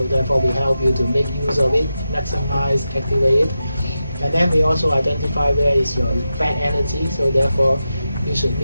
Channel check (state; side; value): inverted; both; correlation -0.90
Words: therefore we help you to make use of it, maximize, activate it. And then we also identify where is your bad energy. So therefore you should